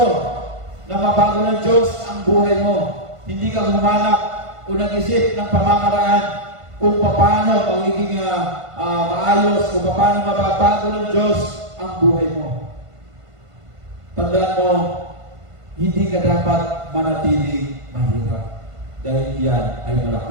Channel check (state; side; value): late; left; 1.5 ms